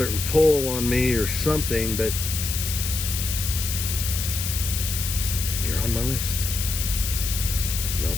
pull on me or something, but you're on my list. No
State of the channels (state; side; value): noise; left; hiss, 3 dB below the sound